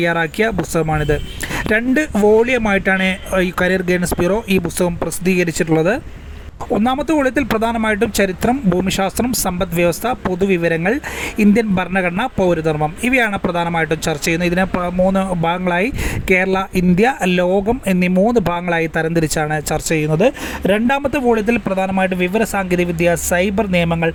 പുസ്തകമാണിത്. 2 വോളിയമായിട്ടാണ് ഈ കരിയർ ഗൈഡൻസ് ബ്യൂറോ ഈ പുസ്തകം പ്രസിദ്ധീകരിച്ചിട്ടുള്ളത്. ഒന്നാമത്തെ വോള്യത്തിൽ പ്രധാനമായിട്ടും ചരിത്രം, ഭൂമിശാസ്ത്രം, സമ്പദ് വ്യവസ്ഥ, പൊതുവിവരങ്ങൾ, ഇന്ത്യൻ ഭരണഘടന, പൗരധർമ്മം ഇവയാണ് പ്രധാനമായിട്ടും ചർച്ച ചെയ്യുന്നത്. ഇതിനെ 3 ഭാഗങ്ങളായി കേരള, ഇന്ത്യ, ലോകം എന്നീ 3 ഭാഗങ്ങളായി തരംതിരിച്ചാണ് ചർച്ച ചെയ്യുന്നത്. രണ്ടാമത്തെ വോള്യത്തിൽ പ്രധാനമായിട്ടും വിവര സാങ്കേതികവിദ്യ, സൈബർ നിയമങ്ങൾ,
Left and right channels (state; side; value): identical; both; correlation 1.00